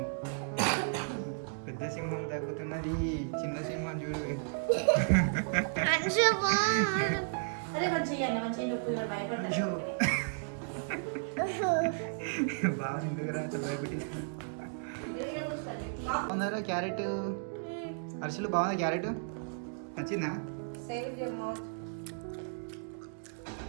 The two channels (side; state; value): left; silent; digital silence